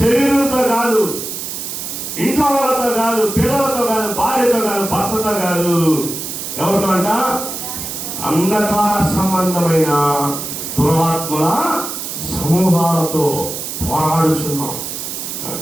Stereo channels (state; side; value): noise; right; hiss, 6 dB below the sound